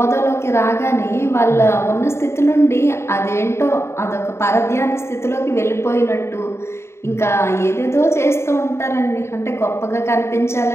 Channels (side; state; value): right; late; 0.13 ms